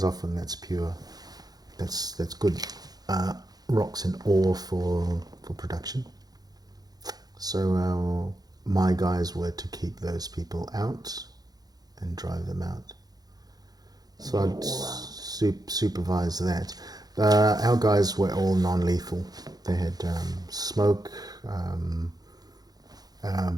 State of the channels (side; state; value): left; late; 0.19 ms